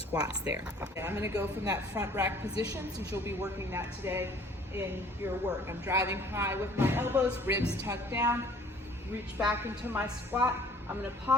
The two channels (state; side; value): normal; both; correlation 0.53